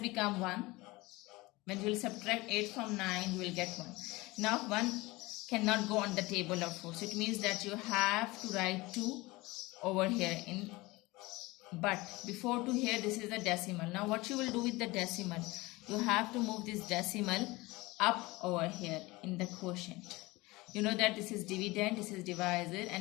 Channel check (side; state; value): right; quieter; 21.7 dB